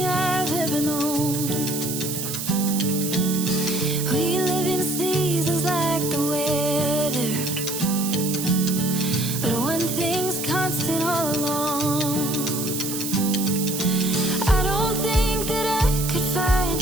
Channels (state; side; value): noise; right; hiss, 5 dB below the sound